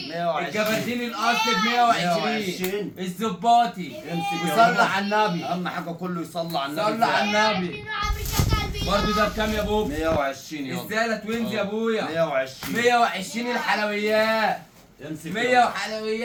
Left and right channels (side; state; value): both; identical; correlation 1.00